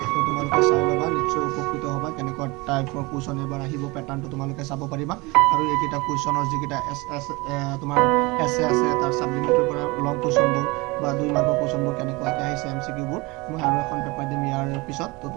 তো তোমালোকে চাই ল'বা, নিশ্চয় উপকৃত হ'বা। কেনেকুৱা টাইপৰ কুৱেশ্যন এইবাৰ আহিব, পেটাৰ্ণটো তোমালোকে চাব পাৰিবা। আৰু এইকেইটা কুৱেশ্যনৰ যিকেইটা তোমাৰ এছে আছে, তাৰ ছাপ্লিমেণ্টৰ পৰা লং কুৱেশ্যনবোৰ বা 2 মাৰ্কৰ কুৱেশ্যনবোৰ কেনেকুৱাকৈ আহিছে, MCQবোৰ মই আৰু এখন পেপাৰ দিম ইয়াৰ পিছত। তো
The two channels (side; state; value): left; quieter; 24.5 dB